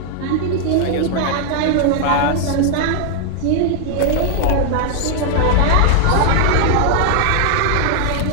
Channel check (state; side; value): different; both; correlation 0.00